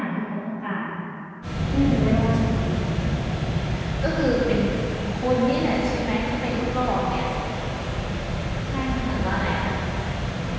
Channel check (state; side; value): identical; both; correlation 1.00